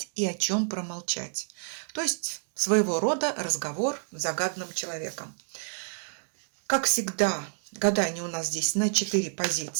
и о чем промолчать. То есть своего рода разговор с загаданным человеком. Как всегда, гадание у нас здесь на 4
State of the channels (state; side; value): silent; left; digital silence